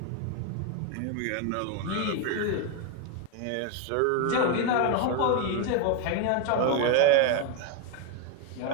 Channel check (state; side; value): different; both; correlation 0.01